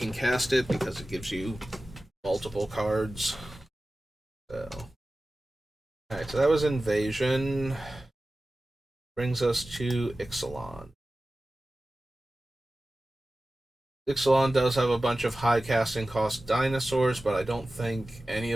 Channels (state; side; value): normal; both; correlation 0.96